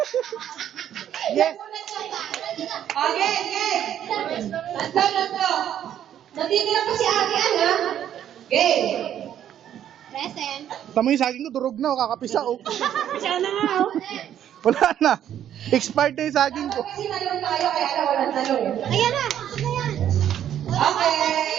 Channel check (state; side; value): quieter; left; 10.4 dB